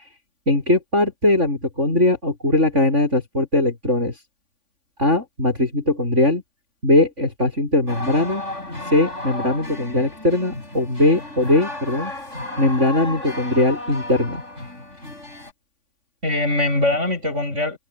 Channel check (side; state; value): left; late; 3.5 ms